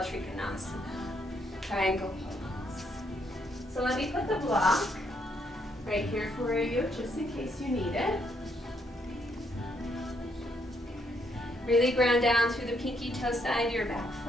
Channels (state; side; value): normal; both; correlation 0.73